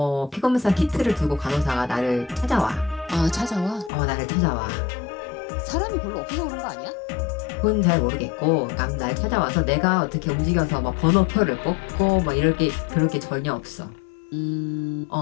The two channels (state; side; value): drops out; right; at 3.9 s